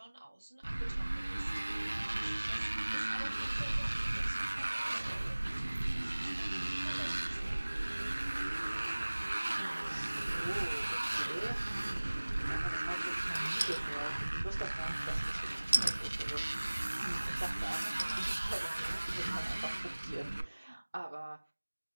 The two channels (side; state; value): both; inverted; correlation -1.00